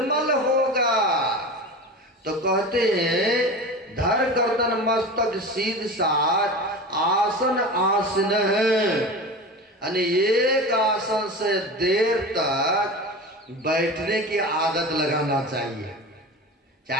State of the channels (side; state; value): both; normal; correlation 0.31